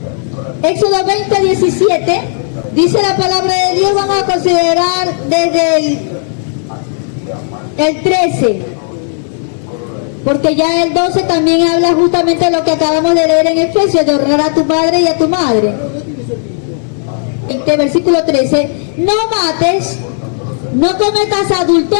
Éxodo 20:17 dice la palabra de Dios. Vamos a considerar desde el 13, porque ya el 12 también habla justamente de lo que acabamos de leer en Efesios, de honrar a tu padre y a tu madre. Versículo 13: no mates, no cometas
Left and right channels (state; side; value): silent; right; 68 dB below the other